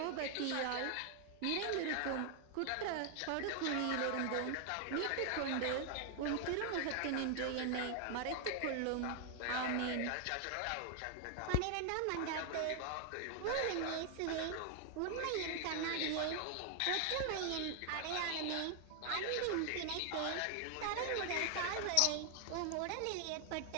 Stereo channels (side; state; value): both; different; correlation 0.00